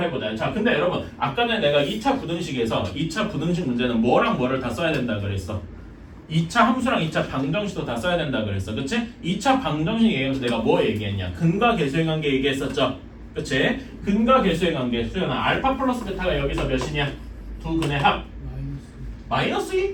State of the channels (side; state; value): both; identical; correlation 1.00